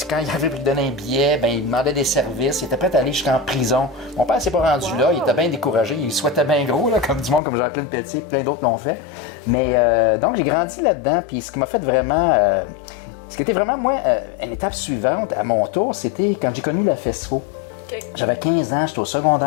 quand il avait lui donner un billet, ben, il demandait des services. Il était prêt à aller jusqu'en prison. Mon père s'est pas rendu là. Il était bien découragé. Il souhaitait bien gros, là, comme du monde, comme Jean-Claude Pelletier, plein d'autres l'ont fait. Mais donc, j'ai grandi là-dedans. Puis ce qui m'a fait vraiment... ce qui était vraiment, moi, une étape suivante à mon tour, c'était quand j'ai connu la FESFO. OK. J'avais 15 ans, j'étais au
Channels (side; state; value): right; drops out; at 7.4 s